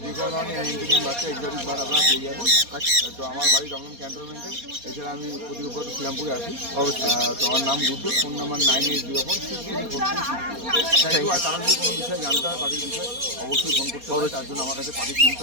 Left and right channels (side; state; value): left; late; 4.2 ms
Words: যে কোনো ধরনের এন্টারটেইন বাচ্চা এক্সোটিক বার আপনারা পেয়ে যাবেন। আচ্ছা, তো আমার বাড়ি দমদম ক্যান্টনমেন্টে। এছাড়া আমি প্রতি রোববার শ্রীরামপুরে আসি। অবশ্যই। তো আমার নাম গুড্ডু, ফোন নাম্বার 9804634366। আর তারা যদি কোনো বিষয়ে জানতে হয় পাখির বিষয়ে অবশ্যই ফোন করতে হবে। তার জন্য আমার কাছে পাখি কিনতে